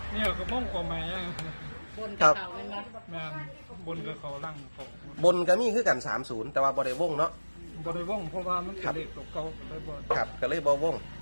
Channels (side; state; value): both; inverted; correlation -1.00